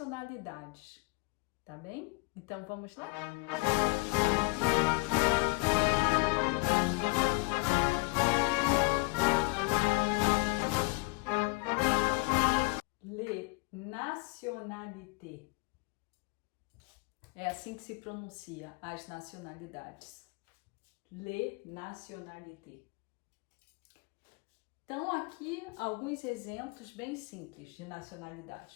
tá bem? Então vamos lá? Les nationalités. É assim que se pronuncia as nacionalidades. Les nationalités. Então, aqui alguns exemplos bem simples de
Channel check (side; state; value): right; quieter; 26.9 dB